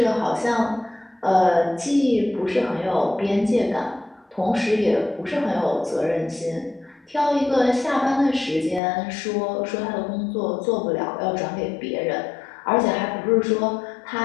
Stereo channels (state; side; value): drops out; right; at 8.8 s